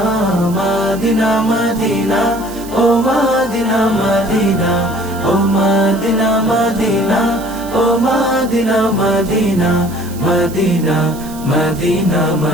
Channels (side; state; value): right; noise; hiss, 18 dB below the sound